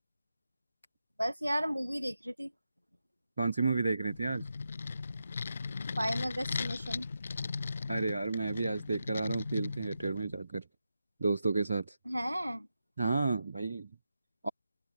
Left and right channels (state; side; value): inverted; both; correlation -0.88